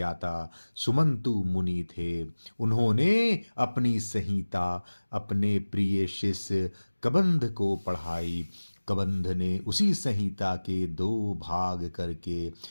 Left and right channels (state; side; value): inverted; both; correlation -1.00